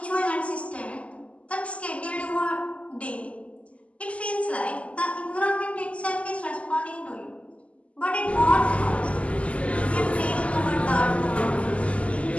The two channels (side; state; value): right; late; 0.064 ms